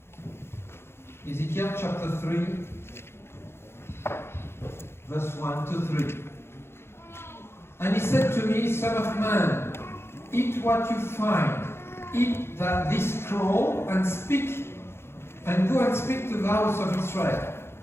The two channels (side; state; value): right; late; 0.12 ms